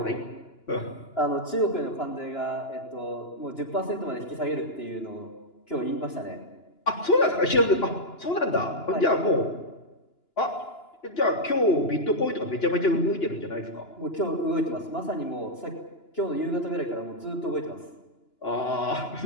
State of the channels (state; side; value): late; right; 2.9 ms